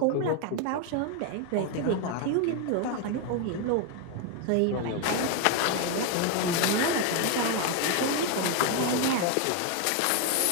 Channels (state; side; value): different; both; correlation 0.01